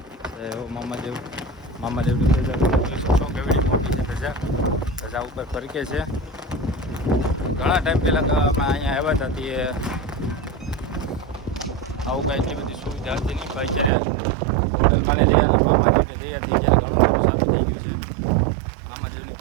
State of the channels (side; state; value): left; drops out; at 13.9 s